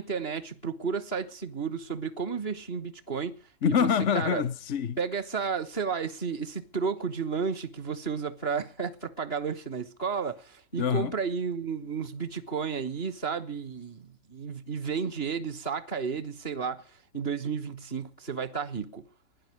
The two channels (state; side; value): late; right; 2.9 ms